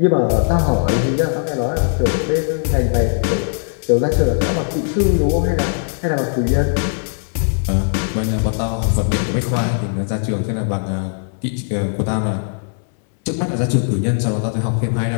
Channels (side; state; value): right; silent; 67 dB below the other